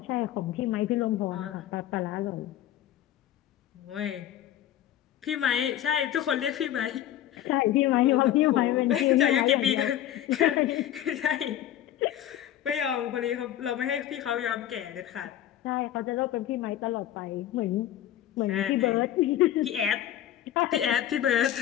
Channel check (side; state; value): right; quieter; 11.9 dB